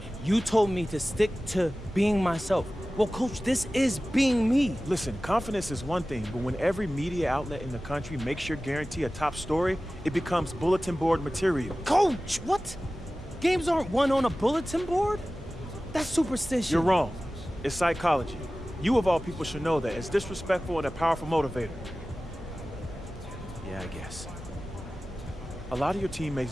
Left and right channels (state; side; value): normal; both; correlation 0.96